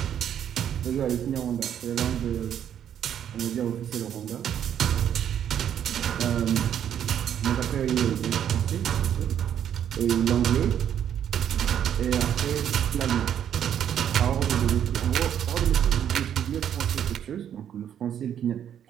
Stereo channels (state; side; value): quieter; left; 9.6 dB